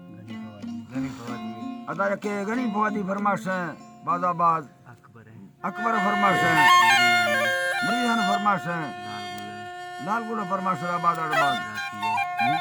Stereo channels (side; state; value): both; identical; correlation 1.00